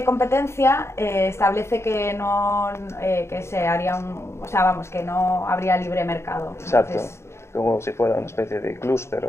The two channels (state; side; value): late; right; 0.13 ms